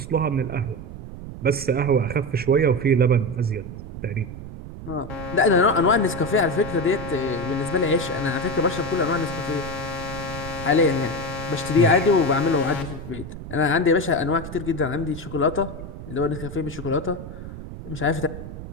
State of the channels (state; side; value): noise; right; rumble, 11 dB below the sound